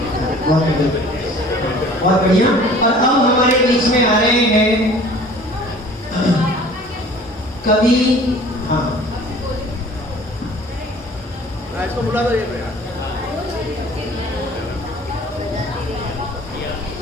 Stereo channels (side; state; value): both; normal; correlation 0.48